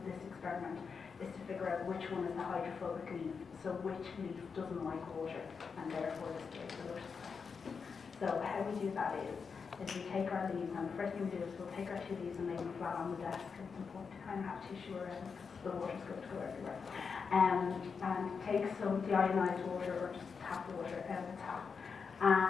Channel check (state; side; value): quieter; right; 5.6 dB